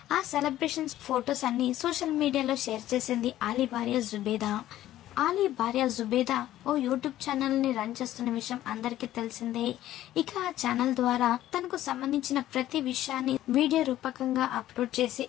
ఆ సెలబ్రేషన్స్ ఫొటోస్ అన్ని సోషల్ మీడియాలో షేర్ చేసింది అలీ భార్య జుబేదా. అలీ భార్య జుబేదా ఓ యూట్యూబ్ ఛానల్ ని రన్ చేస్తున్న విషయం అందరికీ తెలిసిందే. ఇక ఆ ఛానల్ ద్వారా తనకు సంబంధించిన ప్రతి విషయాన్ని వీడియో రూపకంగా అప్లోడ్ చేసి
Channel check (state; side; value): quieter; right; 13.6 dB